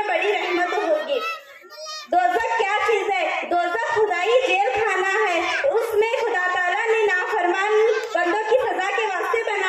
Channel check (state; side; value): identical; both; correlation 1.00